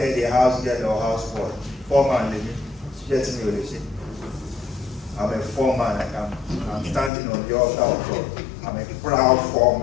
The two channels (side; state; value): right; drops out; at 7.1 s